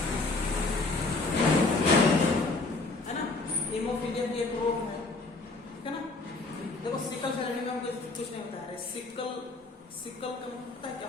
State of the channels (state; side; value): quieter; right; 3.5 dB